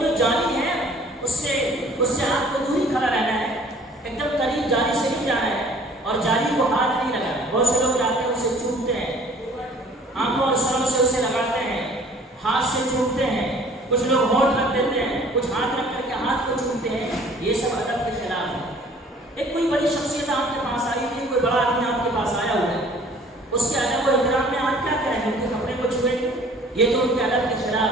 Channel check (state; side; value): normal; both; correlation 0.53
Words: جالی ہے اس سے آپ کو دور ہی کھڑا رہنا ہے، ایک دم قریب جالی سے نہیں جانا ہے، اور جالی کو ہاتھ نہیں لگانا۔ بہت سے لوگ جاتے ہیں اسے چومتے ہیں، آنکھوں اور سروں سے اسے لگاتے ہیں، ہاتھ سے چومتے ہیں، کچھ لوگ ہونٹ رکھ دیتے ہیں، کچھ ہاتھ رکھ کر کے ہاتھ کو چومتے ہیں، یہ سب ادب کے خلاف ہے۔ ایک کوئی بڑی شخصیت آپ کے پاس آئی تھی، کوئی بڑا آدمی آپ کے پاس آیا ہوا ہے، اس کے ادب و احترام میں آپ کیا کریں گے؟ ان کے کپڑے کو چھوئیں گے؟ یہ تو ان کے ادب کے خلاف